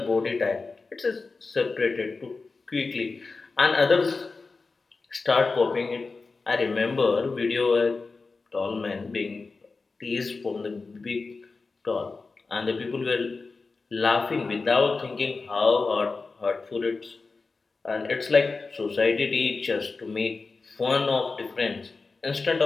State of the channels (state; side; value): quieter; right; 4.1 dB